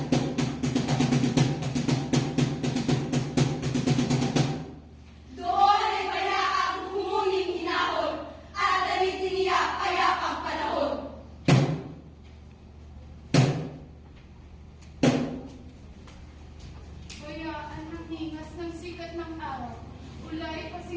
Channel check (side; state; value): both; identical; correlation 1.00